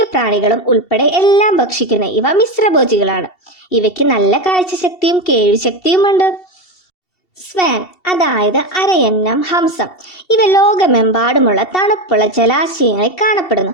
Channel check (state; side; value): late; right; 2.7 ms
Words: പ്രാണികളും ഉൾപ്പെടെ എല്ലാം ഭക്ഷിക്കുന്ന ഇവ മിശ്രഭോജികളാണ്. ഇവയ്ക്ക് നല്ല കാഴ്ചശക്തിയും കേൾവിശക്തിയുമുണ്ട്. സ്വാൻ അതായത് അരയന്നം, ഹംസം. ഇവ ലോകമെമ്പാടുമുള്ള തണുപ്പുള്ള ജലാശയങ്ങളിൽ കാണപ്പെടുന്നു.